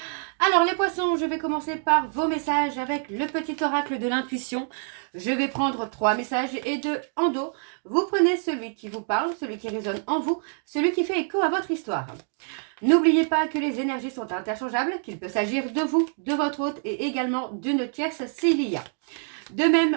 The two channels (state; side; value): silent; left; 57 dB below the other